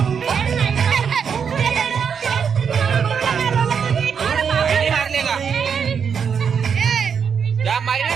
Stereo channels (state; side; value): quieter; left; 6.8 dB